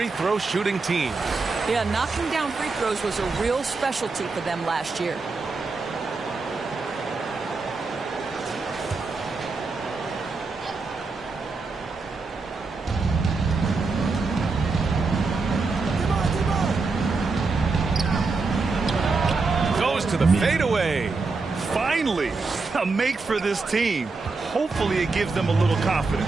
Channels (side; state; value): left; quieter; 4.0 dB